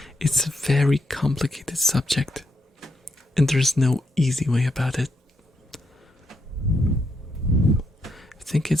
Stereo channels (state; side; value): normal; both; correlation 0.79